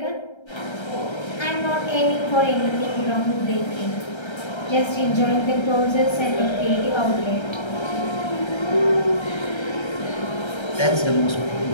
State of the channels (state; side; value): late; right; 1.3 ms